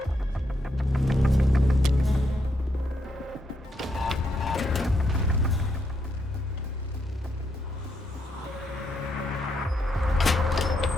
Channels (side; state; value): both; normal; correlation 0.79